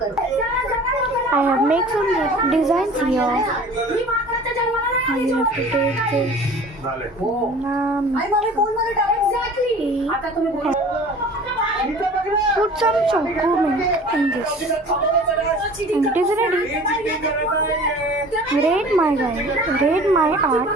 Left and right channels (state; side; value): normal; both; correlation 0.44